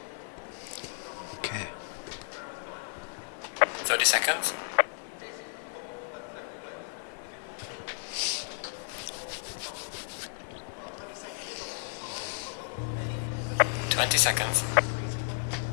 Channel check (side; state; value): right; silent; 56 dB below the other